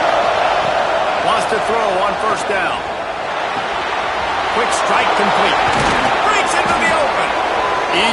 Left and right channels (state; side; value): identical; both; correlation 1.00